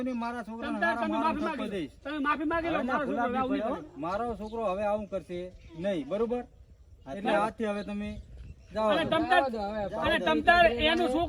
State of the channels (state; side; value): identical; both; correlation 1.00